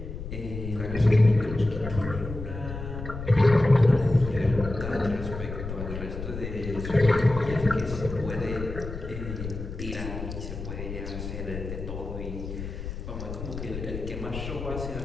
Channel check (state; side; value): noise; left; rumble, 8 dB below the sound